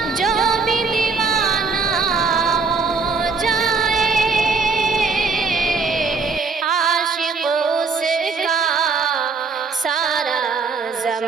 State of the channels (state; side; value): quieter; left; 4.6 dB